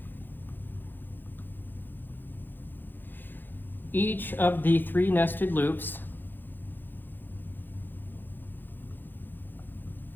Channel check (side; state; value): right; late; 0.093 ms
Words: of the 3 nested loops